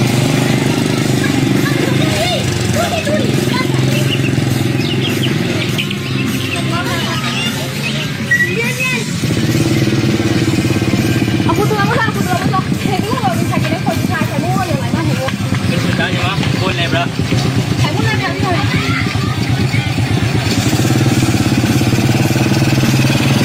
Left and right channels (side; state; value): both; identical; correlation 1.00